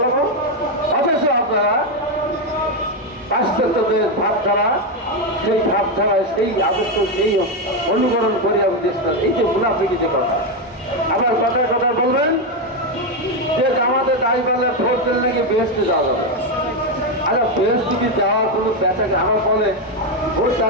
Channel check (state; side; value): normal; both; correlation 0.07